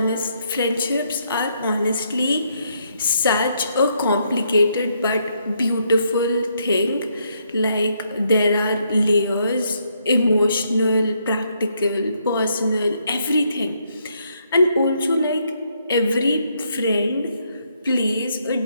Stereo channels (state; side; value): inverted; both; correlation -0.74